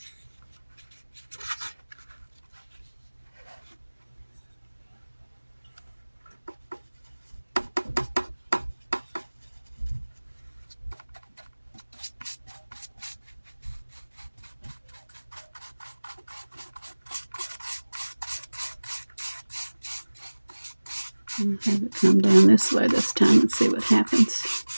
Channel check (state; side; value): inverted; both; correlation -1.00